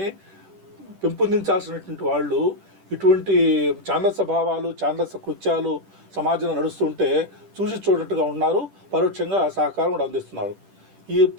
పెంపొందించాల్సినటువంటి వాళ్ళు ఇటువంటి ఛాందస భావాలు, ఛాందస కృత్యాలు సమాజంలో నడుస్తుంటే చూసి చూడట్టుగా ఉన్నారు, పరోక్షంగా సహకారం కూడా అందిస్తున్నారు.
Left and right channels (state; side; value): late; left; 10 ms